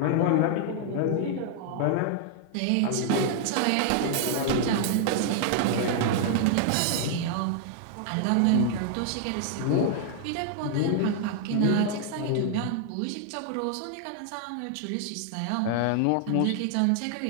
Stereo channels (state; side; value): different; both; correlation 0.00